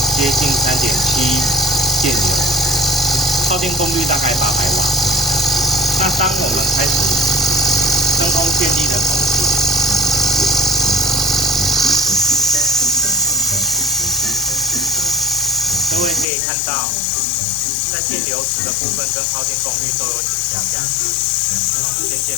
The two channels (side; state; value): right; drops out; at 16.2 s